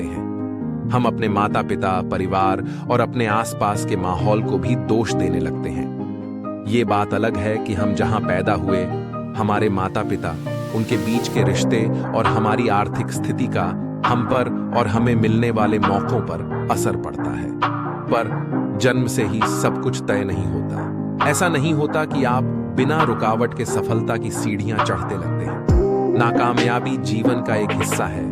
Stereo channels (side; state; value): both; identical; correlation 1.00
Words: हैं। हम अपने माता पिता, परिवार और अपने आसपास के माहौल को भी दोष देने लगते हैं। ये बात अलग है कि हम जहां पैदा हुए, हमारे माता पिता, उनके बीच के रिश्ते और हमारी आर्थिक स्थिति का हम पर और हमें मिलने वाले मौकों पर असर पड़ता है। पर जन्म से ही सब कुछ तय नहीं होता। ऐसा नहीं होता कि आप बिना रुकावट के सफलता की सीढ़ियां चढ़ते लगते हैं। नाकामयाबी जीवन का एक हिस्सा है,